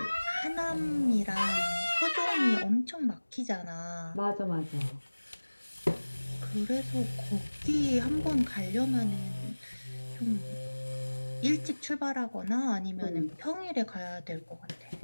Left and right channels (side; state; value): both; inverted; correlation -1.00